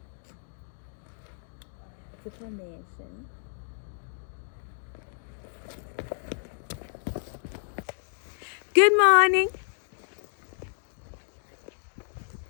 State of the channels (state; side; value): silent; right; 58 dB below the other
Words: Information. Good morning.